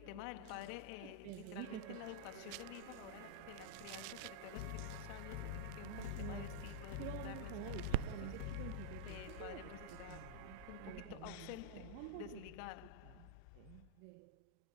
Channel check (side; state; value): both; different; correlation -0.03